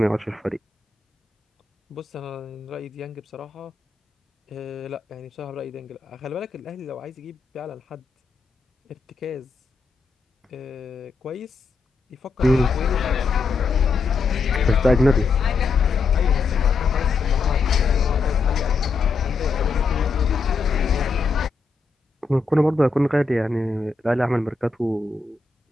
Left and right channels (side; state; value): right; quieter; 4.3 dB